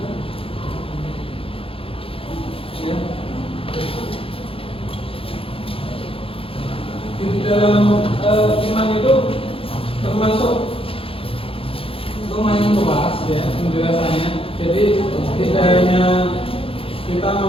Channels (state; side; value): late; right; 0.27 ms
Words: ya, di dalam iman itu termasuk lumayan luas ya penjelasannya. Jadi tidak hanya kita